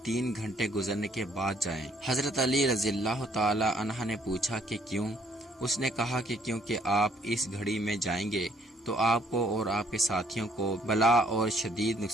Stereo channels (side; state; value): both; normal; correlation 0.64